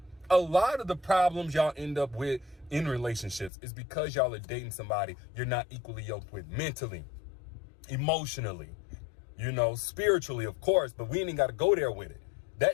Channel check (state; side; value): drops out; right; at 3.5 s